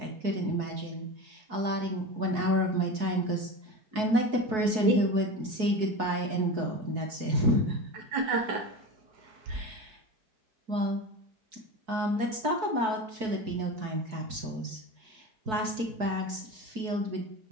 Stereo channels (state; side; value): late; left; 4.6 ms